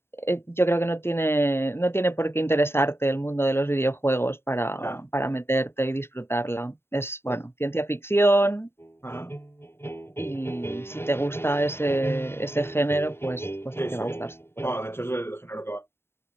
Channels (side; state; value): right; late; 0.11 ms